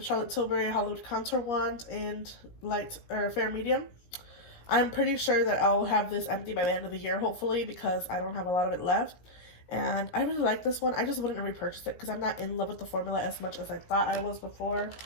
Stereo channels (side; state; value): right; late; 17 ms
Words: Charlotte Tilbury Hollywood Contour Wand in light or fair medium. I'm pretty sure that I'll have this empty by the end of the year, hopefully, because I don't have a lot of it left. And I really like this one. I just wouldn't repurchase it because I'm not in love with the formula as much as I thought I was before.